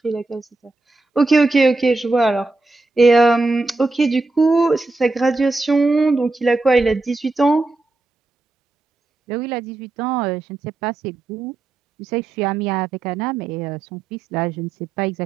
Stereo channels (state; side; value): quieter; left; 3.3 dB